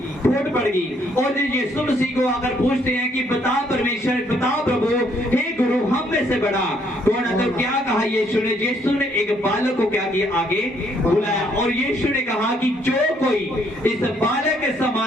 फूट पड़गी। और यीशु मसीह को अगर पूछते हैं कि बता परमेश्वर, बता प्रभु, हे गुरु, हम में से बड़ा कौन है? तो क्या कहा यीशु ने? यीशु ने एक बालक को क्या किया? आगे बुलाया, और यीशु ने कहा कि जो कोई इस बालक के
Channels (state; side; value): normal; both; correlation 0.68